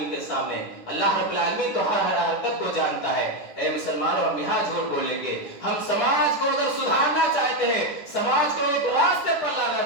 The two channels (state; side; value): late; right; 10 ms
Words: کے سامنے؟ اللہ رب العالمین تو ہر حرکت کو جانتا ہے۔ اے مسلمانوں، ہم یہاں جھوٹ بولیں گے، ہم سماج کو اگر سدھارنا چاہتے ہیں، سماج کو ایک راستے پر لانا